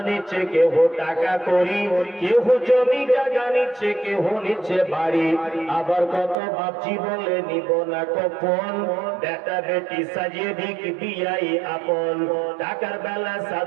নিচ্ছে, কেহ টাকা করি, কেহ জমি জায়গা নিচ্ছে, কেহ নিচ্ছে বাড়ি। আবার কত বাপজি বলে নিব না কখন, বেটা বেটি সাজিয়ে দিক বিয়াই আপন। টাকার বেলা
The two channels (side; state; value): left; drops out; at 6.4 s